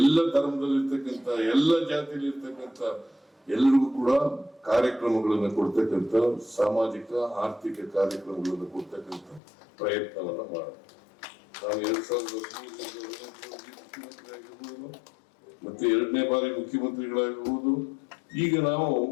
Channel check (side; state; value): right; drops out; at 9.4 s